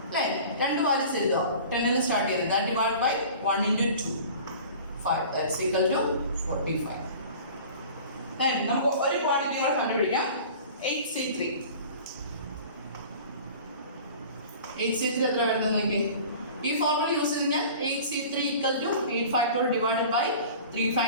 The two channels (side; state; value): both; inverted; correlation -0.42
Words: അല്ലേ? 2 വാല്യൂസ് എഴുതുക. 10ൽ സ്റ്റാർട്ട് ചെയ്തത്. That divide by 1 into 2 5, that's equal to 45. Then നമുക്ക് ഒരു ക്വാണ്ടിറ്റി കൂടെ കണ്ടുപിടിക്കാം. 8C3 എത്ര വരുന്നത് നോക്കി? ഈ ഫോർമുല യൂസ് ചെയ്ത് കഴിഞ്ഞാൽ 8C3 equal to 8 factorial divided by 3